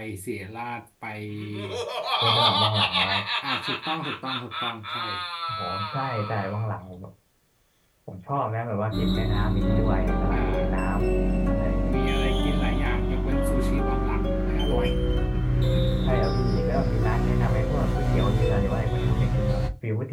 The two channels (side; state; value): both; identical; correlation 1.00